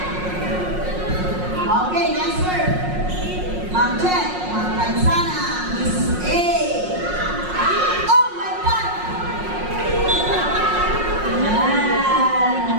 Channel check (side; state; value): left; late; 5.5 ms